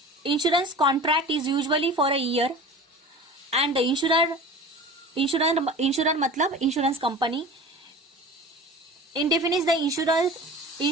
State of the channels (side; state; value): both; normal; correlation 0.37